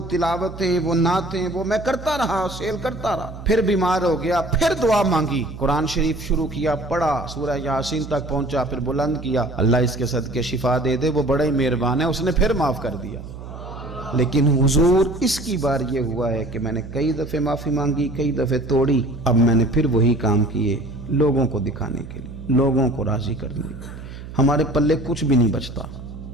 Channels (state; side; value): noise; right; hum, 12 dB below the sound